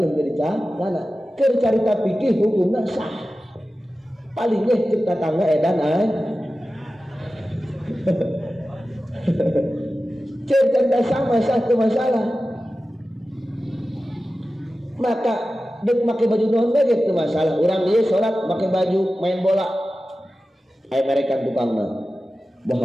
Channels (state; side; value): normal; both; correlation 0.94